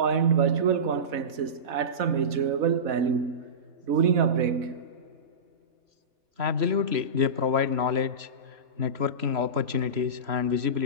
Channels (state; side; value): late; left; 4.1 ms